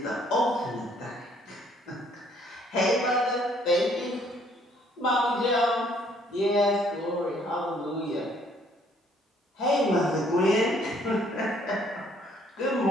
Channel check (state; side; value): normal; both; correlation 0.63